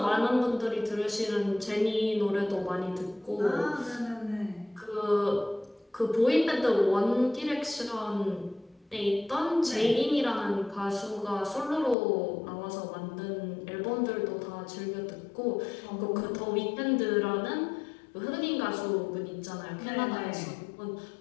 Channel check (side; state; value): right; drops out; at 12.0 s